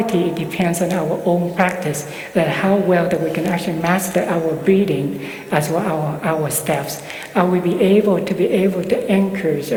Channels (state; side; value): identical; both; correlation 1.00